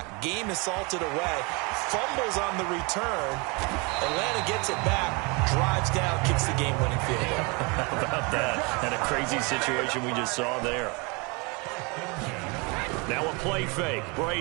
Game is salted away. Fumbles on the return. Atlanta gets it back, drives down, kicks the game-winning field goal. How about that? And a crazy situation we just saw there. Now a play fake.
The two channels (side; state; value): left; quieter; 29.5 dB